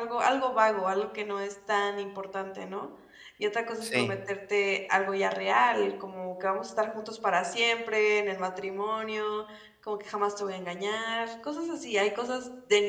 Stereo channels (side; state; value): both; identical; correlation 1.00